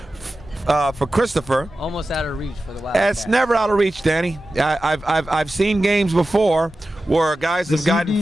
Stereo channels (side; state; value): both; normal; correlation 0.94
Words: for Christopher. Almost out of reach for the Wildcats. It's never out of reach, Danny. I've seen games before where guys have gotten